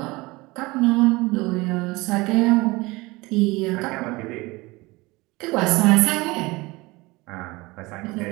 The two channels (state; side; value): quieter; left; 22.6 dB